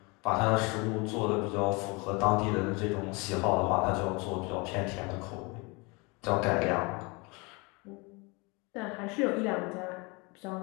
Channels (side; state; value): right; quieter; 28.2 dB